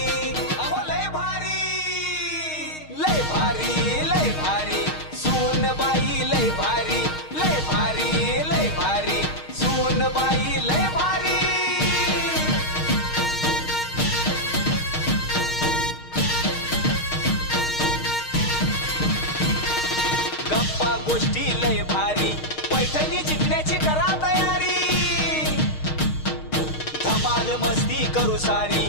अहो लय भारी लय भारी लय भारी सोन बाई लय भारी लय भारी लय भारी सोन बाई लय भारी गोष्टी लय भारी पैठणी जिंकण्याची करा तयारी धमाल मस्ती करू सारी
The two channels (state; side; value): late; right; 6.4 ms